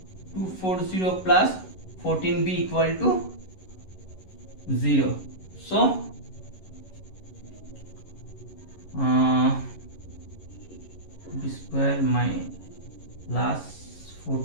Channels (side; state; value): right; late; 11 ms